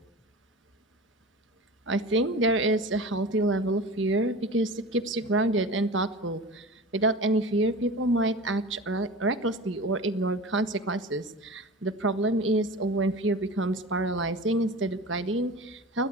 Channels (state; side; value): normal; both; correlation 0.34